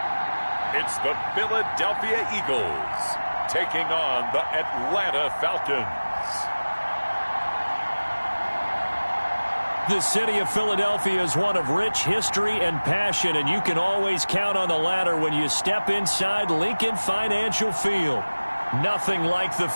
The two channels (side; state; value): both; inverted; correlation -1.00